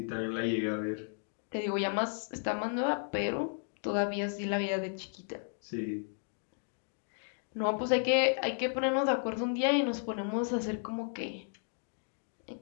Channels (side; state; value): right; silent; 55 dB below the other